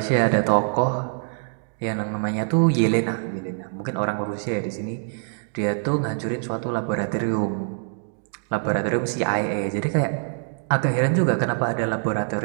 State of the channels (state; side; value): silent; left; 62 dB below the other